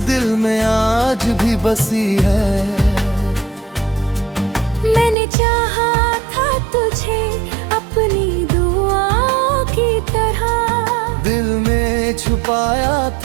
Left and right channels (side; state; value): left; drops out; at 5.2 s